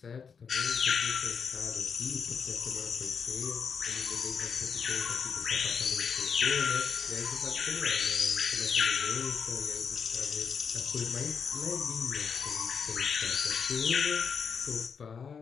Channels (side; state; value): right; quieter; 6.2 dB